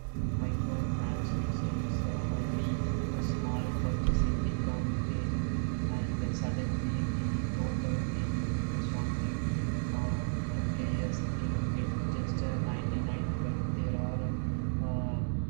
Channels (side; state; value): left; silent; 56 dB below the other